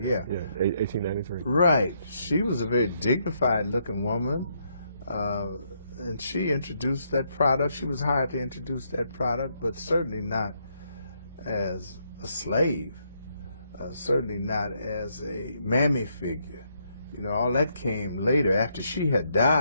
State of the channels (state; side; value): inverted; both; correlation -0.75